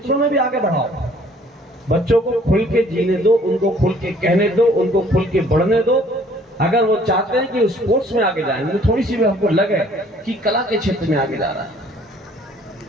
में भी आगे बढ़ाओ। बच्चों को खुल के जीने दो, उनको खुल के कहने दो, उनको खुल के बढ़ने दो। अगर वो चाहते हैं कि स्पोर्ट्स में आगे जाए, तो थोड़ी सी भी हमको लगे कि कला के क्षेत्र में आगे जा रहा है।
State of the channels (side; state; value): both; normal; correlation 0.58